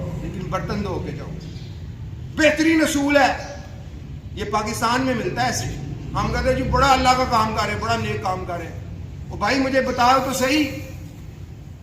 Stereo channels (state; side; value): identical; both; correlation 1.00